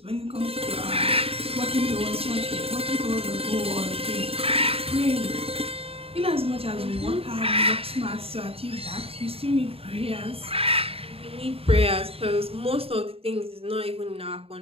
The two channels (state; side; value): late; left; 0.28 ms